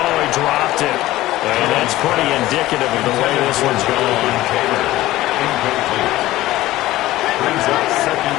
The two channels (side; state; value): right; quieter; 16.4 dB